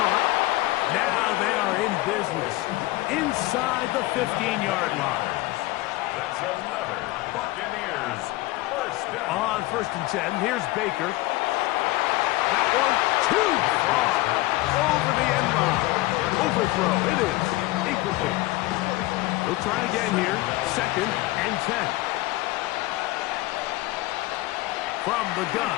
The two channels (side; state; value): right; quieter; 19.3 dB